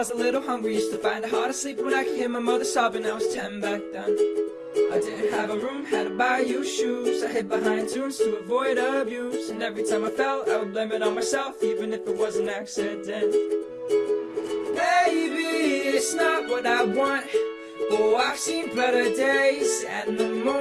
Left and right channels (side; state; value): both; identical; correlation 1.00